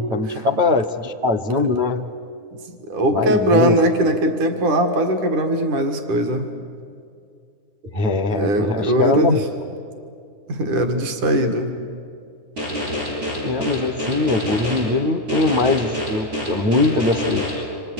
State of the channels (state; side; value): late; left; 10 ms